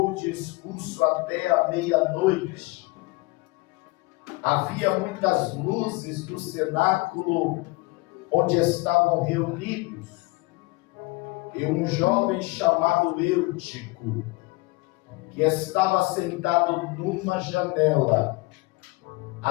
o discurso até a meia-noite. Havia muitas luzes no cenáculo onde estavam reunidos, e um jovem chamado Eutico, que estava sentado numa janela,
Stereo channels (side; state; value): right; quieter; 23.4 dB